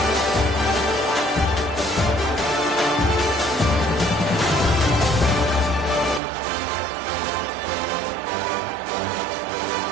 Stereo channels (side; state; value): left; drops out; at 6.2 s